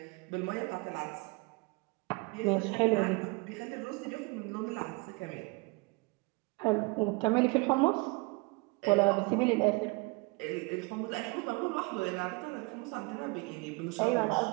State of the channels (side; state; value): left; quieter; 27.3 dB